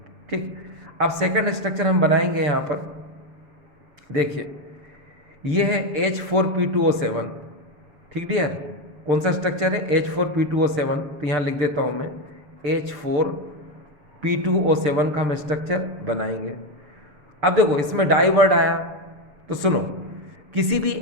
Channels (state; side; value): late; left; 6.8 ms